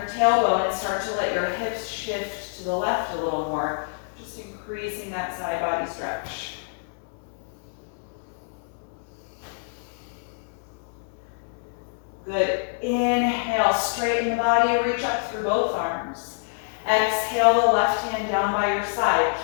tailbone and start to let your hips shift to the left a little more, just increasing that side body stretch. Good. Inhale, straighten the body, reach up through both arms. Exhale the left hand down by your side.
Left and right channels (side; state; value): right; silent; 61 dB below the other